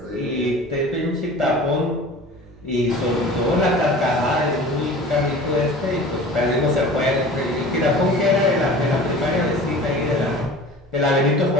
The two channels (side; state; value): both; normal; correlation 0.40